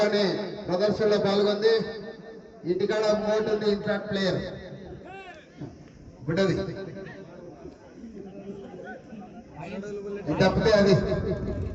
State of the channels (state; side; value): identical; both; correlation 1.00